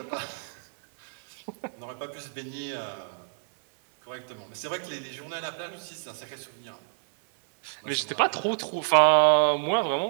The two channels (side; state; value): left; silent; 59 dB below the other